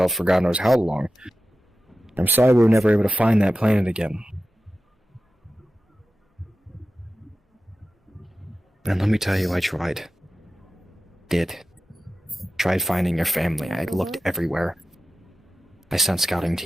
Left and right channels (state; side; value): normal; both; correlation 0.94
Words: for God knows how long. I'm sorry we were never able to find that planet again. And let me tell you, I tried. Tried finding your family. I looked everywhere. I sent scouting